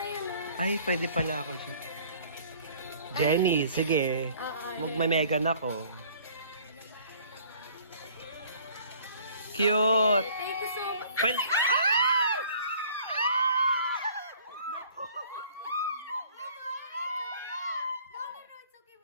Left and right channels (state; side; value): inverted; both; correlation -0.54